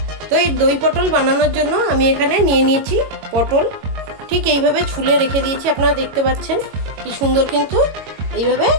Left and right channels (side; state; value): left; late; 22 ms